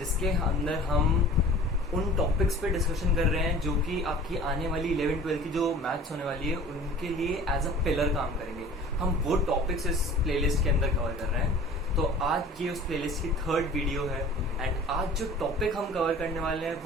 अंदर हम उन टॉपिक्स पे डिस्कशन कर रहे हैं जो कि आपकी आने वाली 11-12 की जो मैथ्स होने वाली है उनके लिए एज अ पिलर काम करेंगे। हम वो टॉपिक्स इस प्लेलिस्ट के अंदर कवर कर रहे हैं। तो आज ये उस प्लेलिस्ट की थर्ड वीडियो है एंड आज जो टॉपिक हम कवर करने वाले हैं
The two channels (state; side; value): normal; both; correlation 0.44